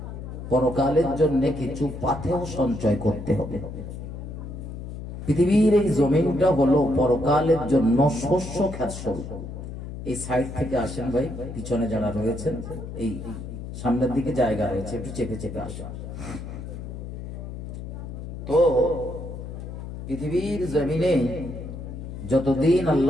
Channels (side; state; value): left; noise; hum, 9 dB below the sound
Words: পরকালের জন্য কিছু পাথেয় সঞ্চয় করতে হবে। পৃথিবীর এই জমিনটা হলো পরকালের জন্য শস্য ক্ষেত স্বরূপ। এই সাইড থেকে আসেন ভাই, পিছনে যারা রয়েছেন এই সামনের দিকে জায়গা রয়েছে, একটু চেপে চেপে আসেন। তো পৃথিবীর জমিনে যতদিন